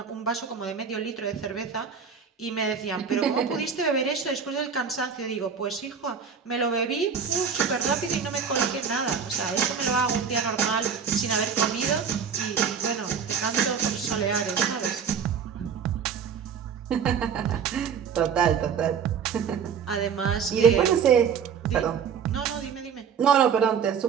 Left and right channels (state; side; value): quieter; left; 6.8 dB